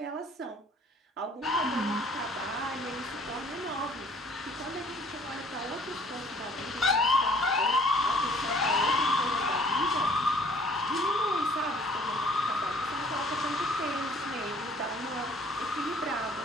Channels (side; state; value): both; normal; correlation 0.55